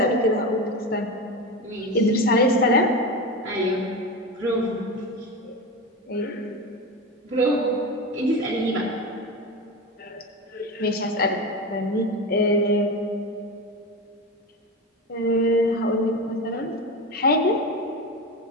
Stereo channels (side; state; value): both; normal; correlation 0.22